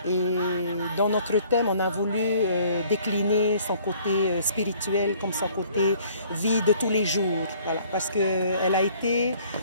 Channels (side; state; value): both; inverted; correlation -0.57